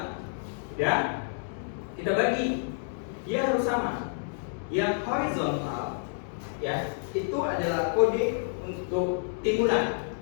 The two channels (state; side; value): silent; right; digital silence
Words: Ya, kita bagi, dia harus sama. Yang horizontal, ya, itu adalah kode untuk timbunan.